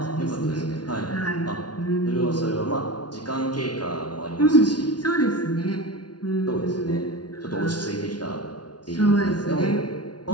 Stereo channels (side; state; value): right; late; 0.69 ms